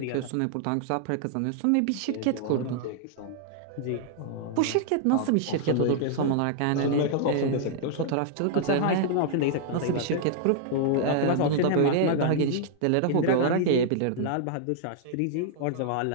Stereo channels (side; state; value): both; different; correlation -0.01